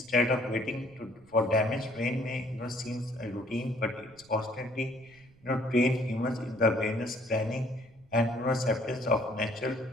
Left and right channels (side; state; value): right; noise; rumble, 28 dB below the sound